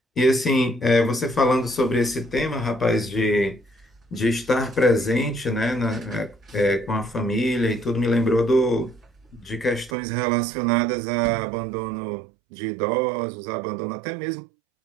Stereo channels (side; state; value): left; drops out; at 10.0 s